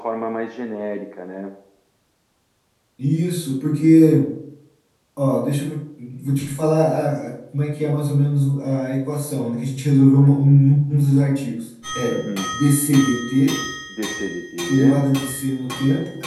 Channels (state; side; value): identical; both; correlation 1.00